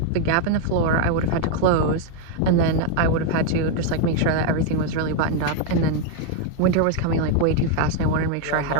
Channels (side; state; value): both; different; correlation 0.01